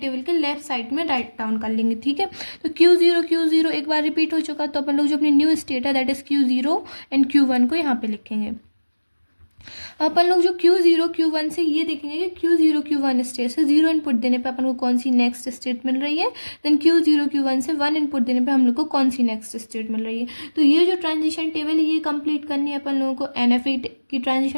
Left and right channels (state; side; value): inverted; both; correlation -1.00